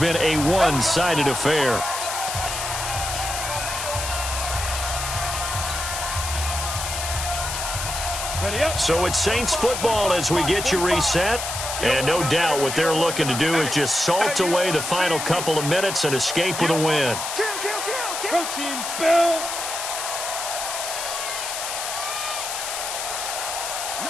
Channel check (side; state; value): left; noise; hiss, 4 dB below the sound